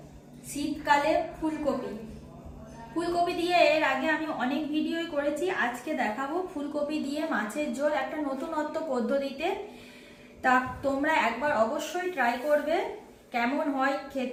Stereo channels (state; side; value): identical; both; correlation 1.00